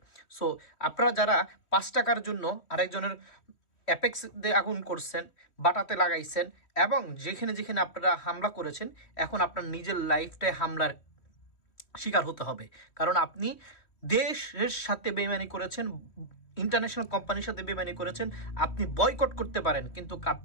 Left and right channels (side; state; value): right; late; 3.1 ms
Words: সো আপনারা যারা 5 টাকার জন্য আরেকজনের অ্যাপেক্স দিয়ে আগুন করছেন, বাটাতে লাগাইছেন এবং যেখানে যেখানে আপনারা হামলা করেছেন, এখন আপনার নিজের লাইফটাই হামলার শিকার হতে হবে। কারণ আপনি দেশের সাথে বেইমানি করেছেন, ইন্টারন্যাশনাল কোম্পানির সাথে বেইমানি করেছেন। আপনি বয়কট করতে পারেন কিন্তু